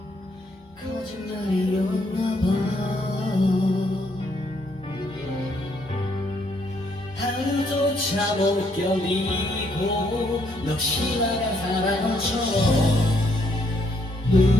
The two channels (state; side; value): normal; both; correlation 0.72